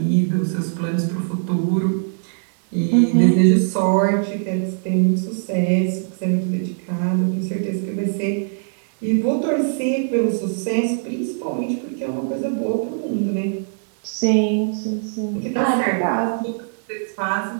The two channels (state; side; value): silent; left; digital silence